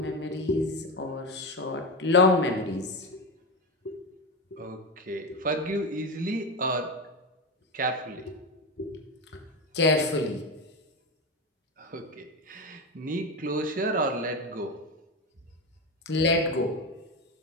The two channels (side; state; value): both; normal; correlation 0.17